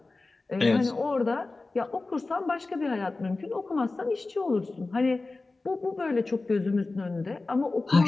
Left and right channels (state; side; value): quieter; right; 3.4 dB